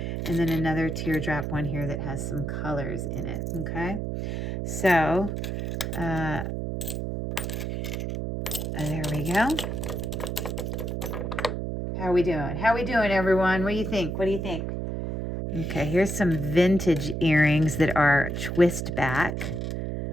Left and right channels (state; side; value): noise; right; hum, 3 dB below the sound